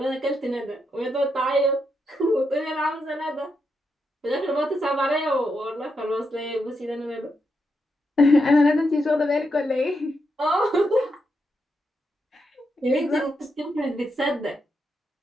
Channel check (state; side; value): normal; both; correlation 0.83